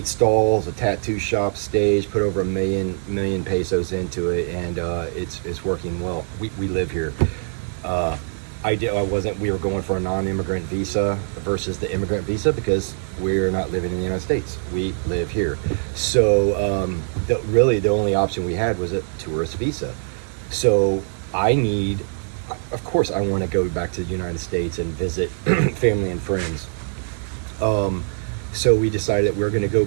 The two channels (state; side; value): silent; left; 61 dB below the other